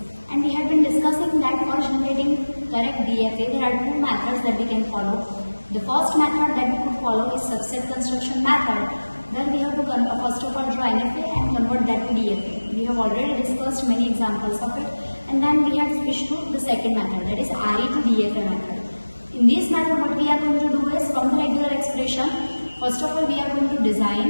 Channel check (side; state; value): both; inverted; correlation -1.00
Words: And we had been discussing that for generating correct DFA there are two methods that we can follow. The first method that we could follow is subset construction method. Then we have to first of all draw NFA and convert that to DFA. We have already discussed many examples of it, and then we have switched to the second method, that is RE to DFA method. In this method what we are going to do is, from the regular expression, first of all we are going to